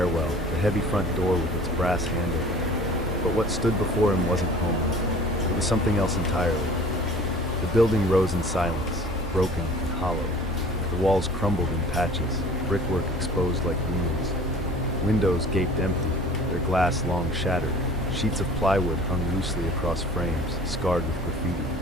the heavy front door with its brass handle. But what stood before him wasn't home. It was something else entirely. The building rose in silence, broken and hollow. The walls crumbled in patches, brickwork exposed like wounds. Windows gaped empty, their glass long shattered. Sheets of plywood hung loosely across frames, scarred with graffiti.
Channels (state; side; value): normal; both; correlation 0.46